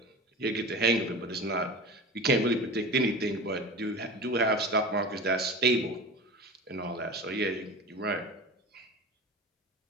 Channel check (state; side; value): normal; both; correlation 0.32